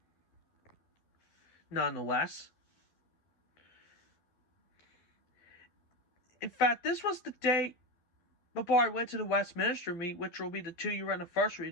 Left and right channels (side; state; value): right; late; 12 ms